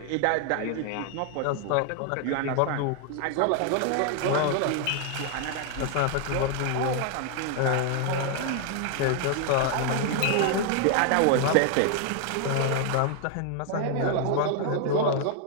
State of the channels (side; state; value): both; different; correlation 0.00